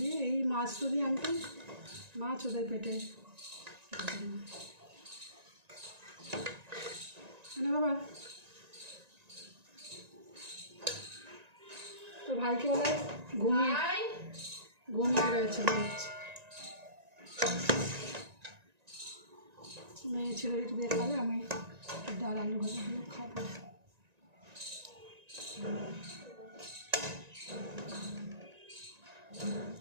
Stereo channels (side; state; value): left; late; 1.9 ms